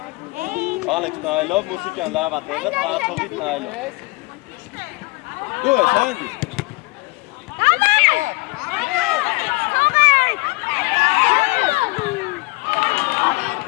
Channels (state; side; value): quieter; right; 24.9 dB